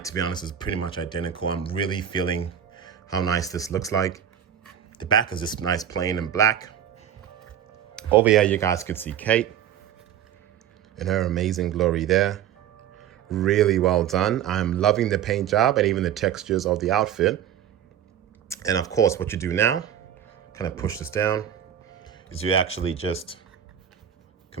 to be honest, is pretty much identical. I'm really feeling how nice this looks like. The back is just nice, plain and black. Over here, you guys can see Kate in her amazing glory there. Really well done. I'm loving the paint job and even the textures of the outfit. And of course, what you do now, kind of push this down, is you actually just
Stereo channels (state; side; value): quieter; left; 9.7 dB